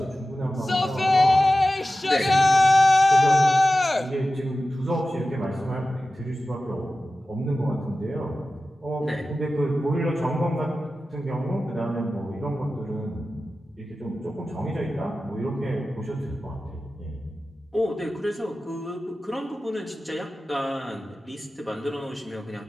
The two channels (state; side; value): normal; both; correlation 0.95